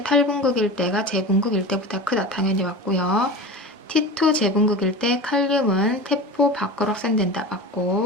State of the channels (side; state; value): both; normal; correlation 0.31